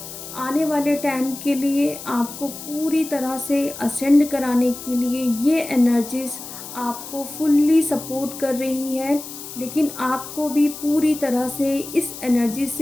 आने वाले टाइम के लिए आपको पूरी तरह से असेंड कराने के लिए ये एनर्जीज़ आपको फुल्ली सपोर्ट कर रही है, लेकिन आपको भी पूरी तरह से इस एनर्जी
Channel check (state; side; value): noise; left; hiss, 12 dB below the sound